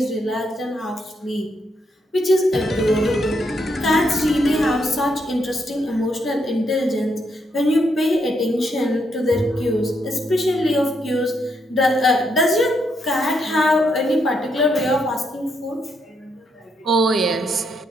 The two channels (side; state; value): both; normal; correlation 0.77